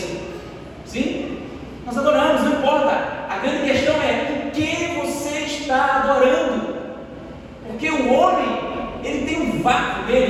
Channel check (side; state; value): both; identical; correlation 1.00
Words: Sim? Nós adoramos, não importa. A grande questão é o que você está adorando. Porque o homem, ele tem um vácuo